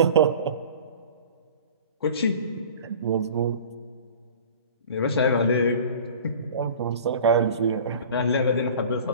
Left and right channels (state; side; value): inverted; both; correlation -0.42